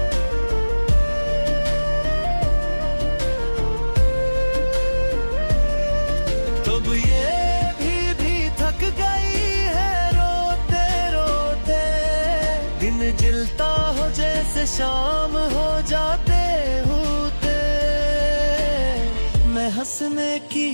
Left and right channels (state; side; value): inverted; both; correlation -1.00